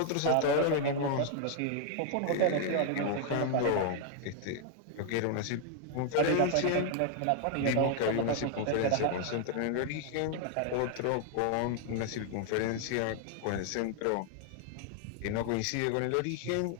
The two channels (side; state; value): both; different; correlation 0.00